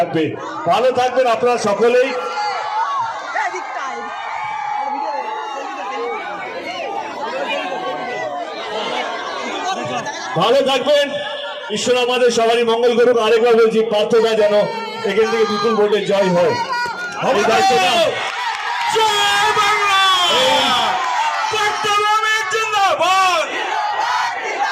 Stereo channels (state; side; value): identical; both; correlation 1.00